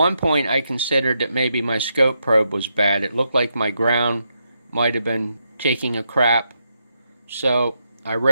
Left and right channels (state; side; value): inverted; both; correlation -0.82